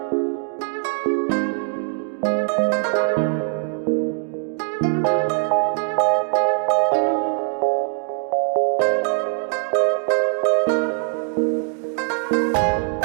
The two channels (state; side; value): silent; left; digital silence